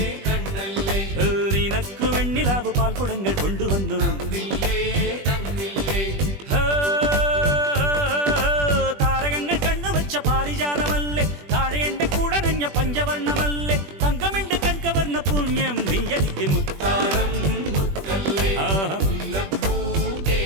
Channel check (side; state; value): left; late; 21 ms